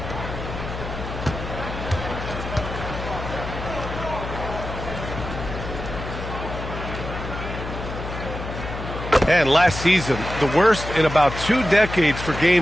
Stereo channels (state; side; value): noise; left; hum, 7 dB below the sound